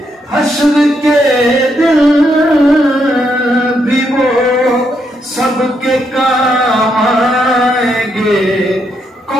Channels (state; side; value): normal; both; correlation 0.78